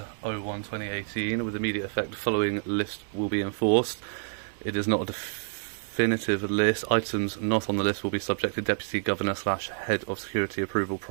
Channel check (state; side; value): silent; left; digital silence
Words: 01/2018 with immediate effect. The following list will be enforced. It is not a definitive list. Items not on the list will be subject to Deputy Governor / Head of Security approval